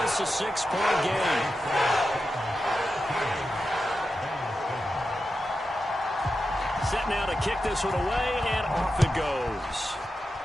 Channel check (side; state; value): both; normal; correlation 0.90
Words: a 6-point game. Set now to kick this one away, and off it goes.